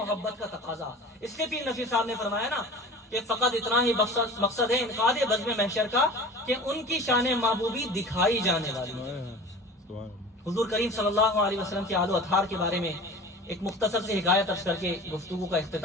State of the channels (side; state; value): both; normal; correlation 0.39